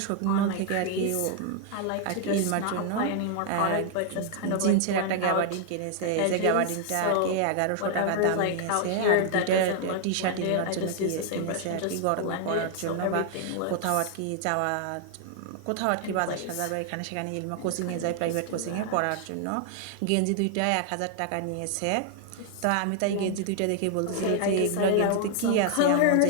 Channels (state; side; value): different; both; correlation 0.00